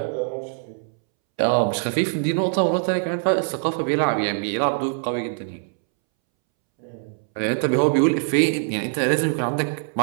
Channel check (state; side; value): silent; left; 63 dB below the other